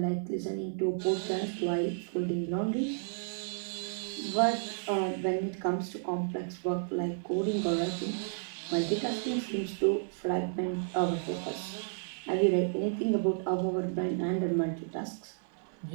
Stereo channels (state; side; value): silent; left; 56 dB below the other